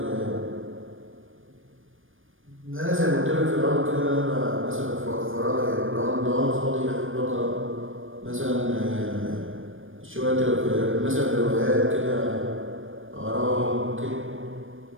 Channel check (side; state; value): left; late; 0.59 ms